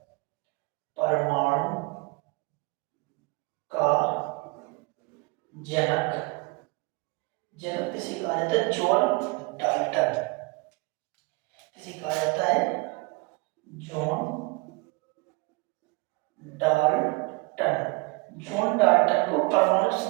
परमाणु का जनक किसे कहा जाता है? John Dalton. किसे कहा जाता है? जॉन डाल्टन को परमाणु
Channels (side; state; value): left; quieter; 26.3 dB